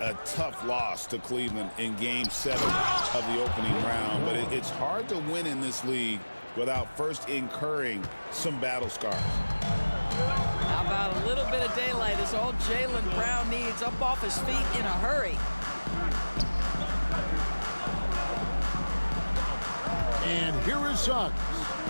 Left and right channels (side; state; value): both; inverted; correlation -1.00